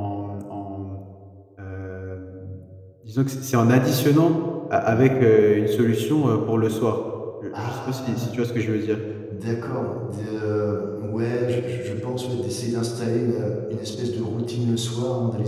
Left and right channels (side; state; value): both; identical; correlation 1.00